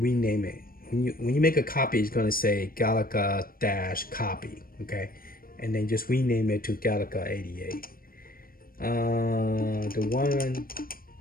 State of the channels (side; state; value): right; late; 0.42 ms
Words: rename it. When you make a copy, it's gonna say Galaga-copy. Okay, and then just rename it to Galaga 88. The one